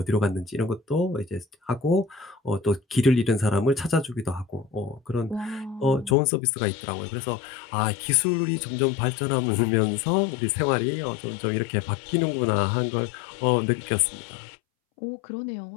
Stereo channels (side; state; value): right; drops out; at 6.2 s